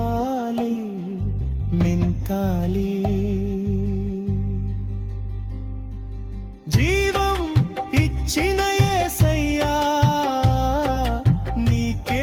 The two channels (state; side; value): identical; both; correlation 1.00